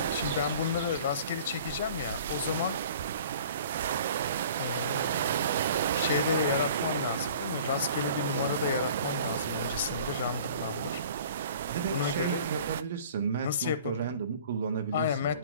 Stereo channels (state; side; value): inverted; both; correlation -0.47